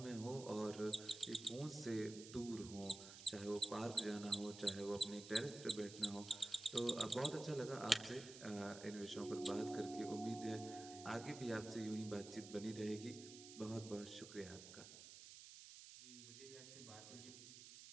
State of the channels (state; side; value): noise; right; hiss, 13 dB below the sound